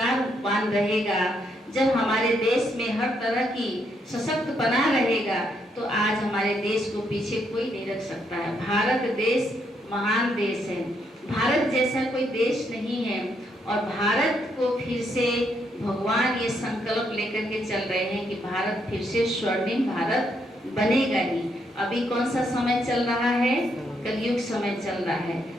रहेगा, जब हमारे देश में हर तरह की सशक्त बना रहेगा, तो आज हमारे देश को पीछे कोई नहीं रख सकता है। भारत देश महान देश है, भारत जैसा कोई देश नहीं है और भारत को फिर से भगवान ये संकल्प लेकर के चल रहे हैं कि भारत फिर से स्वर्णिम भारत बनेगा ही। अभी कौन सा समय चल रहा है? कलयुग समय चल रहा है।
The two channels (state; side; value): normal; both; correlation 0.76